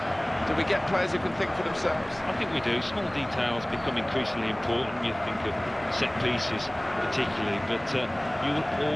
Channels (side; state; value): left; noise; hum, 26 dB below the sound